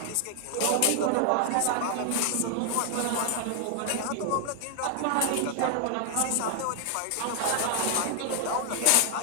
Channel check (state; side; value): different; both; correlation 0.00